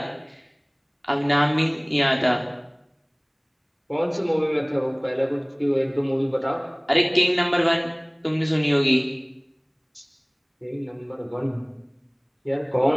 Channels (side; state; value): both; identical; correlation 1.00